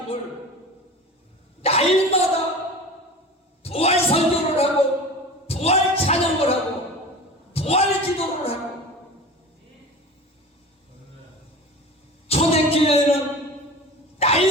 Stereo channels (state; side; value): normal; both; correlation 0.35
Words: 날마다 부활 설교를 하고 부활 찬양을 하고 부활 기도를 하고, 초대교회는